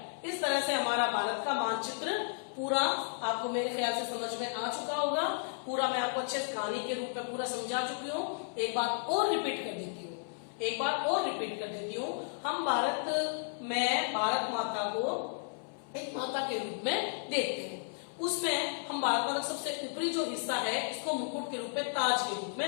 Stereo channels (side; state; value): right; silent; 55 dB below the other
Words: इस तरह से हमारा भारत का मानचित्र पूरा आपको मेरे ख्याल से समझ में आ चुका होगा। पूरा मैं आपको अच्छे कहानी के रूप में पूरा समझा चुकी हूँ। एक बात और रिपीट कर देती हूँ, हम भारत में भारत माता को एक माता के रूप में देखते हैं। उसमें हम भारत माता का सबसे ऊपरी जो हिस्सा है इसको मुकुट के रूप में, ताज के रूप में